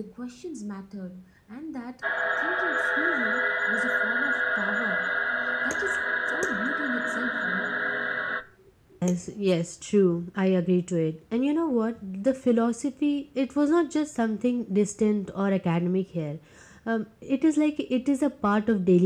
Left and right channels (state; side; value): identical; both; correlation 1.00